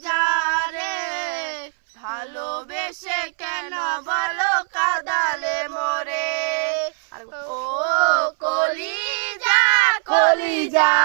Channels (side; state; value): left; silent; 62 dB below the other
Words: রে ভালোবেসে কেন বলো কাঁদালে মোরে। ও কলিজা কলিজা